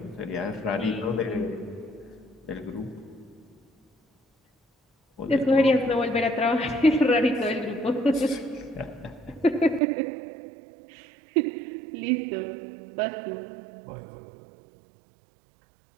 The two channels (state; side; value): drops out; left; at 9.8 s